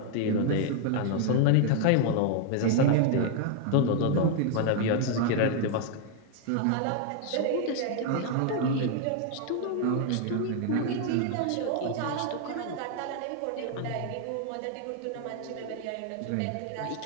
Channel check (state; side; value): different; both; correlation 0.00